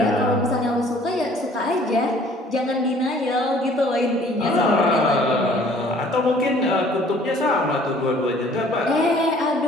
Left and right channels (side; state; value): both; normal; correlation 0.55